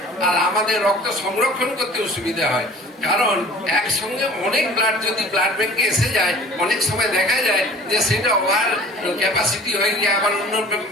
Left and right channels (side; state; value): both; normal; correlation 0.45